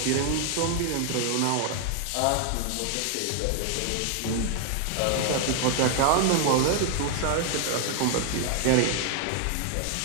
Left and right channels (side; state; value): both; different; correlation 0.00